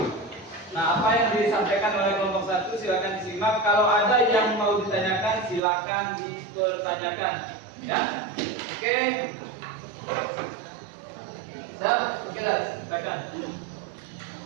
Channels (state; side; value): drops out; left; at 5.6 s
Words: Nah, apa yang disampaikan oleh kelompok 1 silakan disimak. Kalau ada yang mau ditanyakan silakan dipertanyakan. Ya, oke. Siap? Oke, silakan.